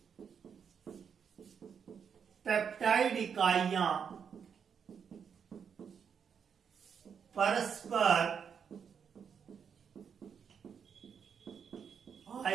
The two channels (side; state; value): left; quieter; 7.1 dB